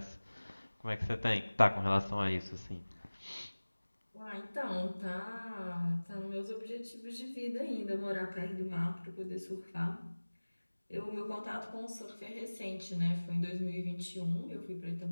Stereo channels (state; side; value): inverted; both; correlation -1.00